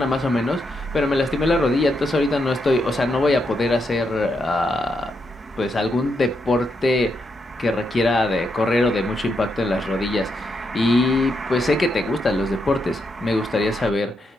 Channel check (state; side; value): normal; both; correlation 0.81